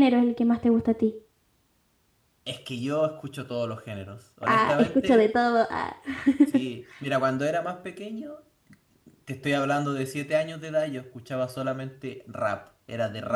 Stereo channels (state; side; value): identical; both; correlation 1.00